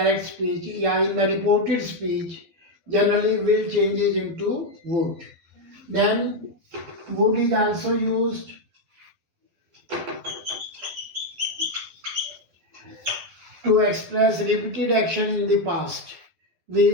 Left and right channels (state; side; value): late; left; 12 ms